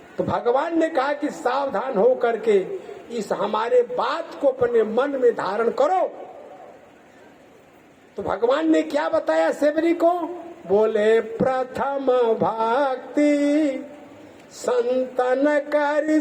तो भगवान ने कहा कि सावधान हो करके इस हमारे बात को अपने मन में धारण करो। तो भगवान ने क्या बताया सेवरी को? बोले प्रथम भक्ति संतन करि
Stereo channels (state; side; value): identical; both; correlation 1.00